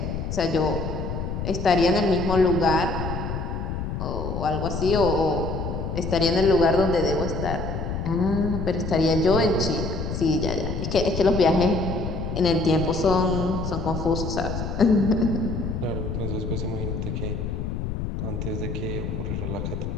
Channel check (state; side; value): noise; left; rumble, 4 dB below the sound